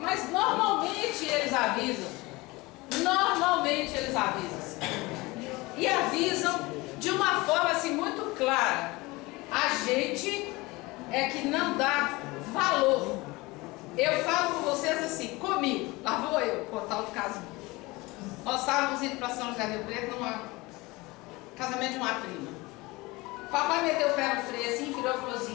normalmente eles avisam. Normalmente eles avisam. E avisam de uma forma assim muito clara. A gente é que não dá valor. Eu falo com vocês assim, comigo, lá vou eu contar o caso. Nós estávamos indo para São José do Rio Preto num casamento de uma prima. Papai meteu o pé no freio assim, virou e falou assim,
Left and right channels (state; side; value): quieter; right; 22.5 dB